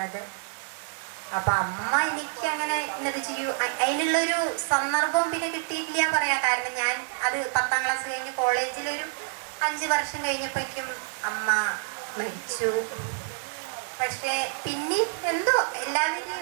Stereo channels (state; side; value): silent; left; 60 dB below the other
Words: അപ്പം അമ്മ എനിക്ക് അങ്ങനെ എന്നത് ചെയ്യൂ അതിനുള്ളൊരു സന്ദർഭവും പിന്നെ കിട്ടിയിട്ടില്ല പറയാം. കാരണം ഞാൻ അത് 10ാം ക്ലാസ് കഴിഞ്ഞ് കോളേജിലൊരു 5 വർഷം കഴിഞ്ഞപ്പോഴേക്കും അമ്മ മരിച്ചു. പക്ഷേ പിന്നെ എന്തോ